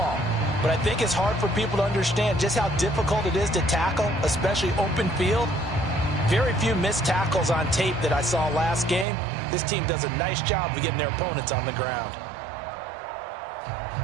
But I think it's hard for people to understand just how difficult it is to tackle, especially open field. Very few missed tackles on tape that I saw last game. This team does a nice job of getting their opponents on the ground.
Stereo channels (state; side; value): drops out; left; at 9.1 s